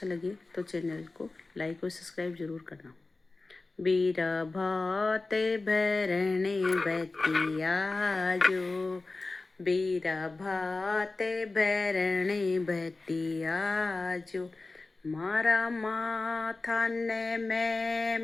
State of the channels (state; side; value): quieter; right; 3.4 dB